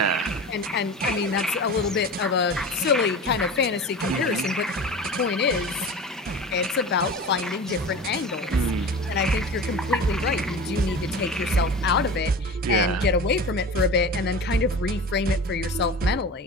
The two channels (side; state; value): both; normal; correlation 0.33